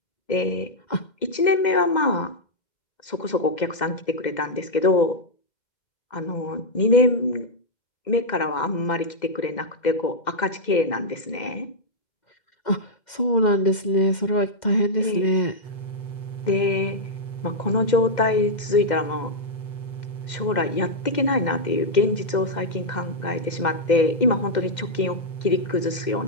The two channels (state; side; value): late; right; 2.1 ms